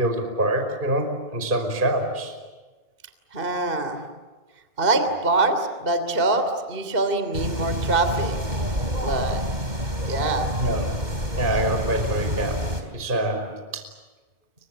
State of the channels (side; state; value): left; late; 2.1 ms